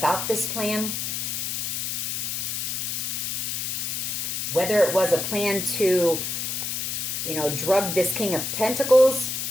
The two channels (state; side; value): noise; left; hiss, 2 dB below the sound